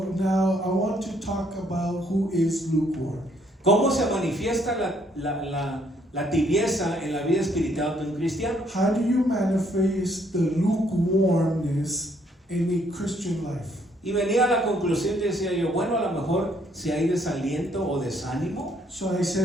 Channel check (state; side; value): normal; both; correlation 0.68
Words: now I want to talk about who is lukewarm. ¿Cómo se manifiesta la tibieza en la vida espiritual de un cristiano? How do you manifest the lukewarmness in a Christian life? Y venía a la conclusión y decía yo, bueno, a lo mejor si hay desaliento o desánimo. So I